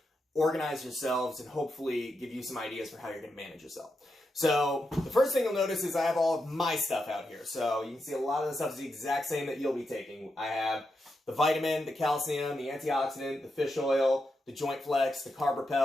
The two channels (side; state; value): both; normal; correlation 0.86